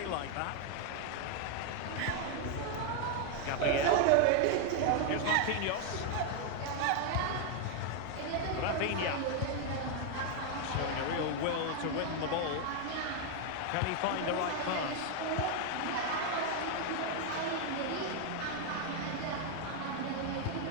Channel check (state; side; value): different; both; correlation 0.01